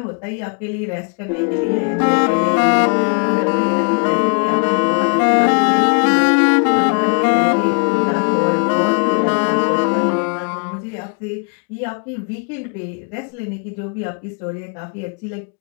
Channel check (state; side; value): quieter; right; 37.2 dB